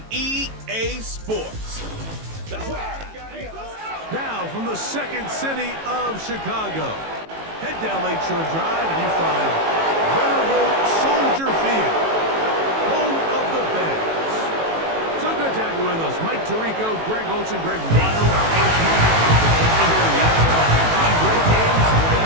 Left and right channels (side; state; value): left; late; 18 ms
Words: EA Sports. Now from the second city of Chicago, head down Lakeshore Drive and you find venerable Soldier Field, home of the Bears. So good to have you with us. Mike Tirico, Greg Olson, Greg Wild. Great games,